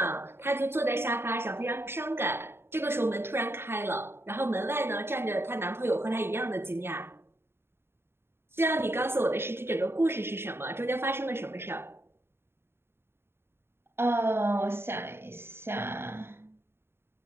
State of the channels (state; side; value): late; left; 0.11 ms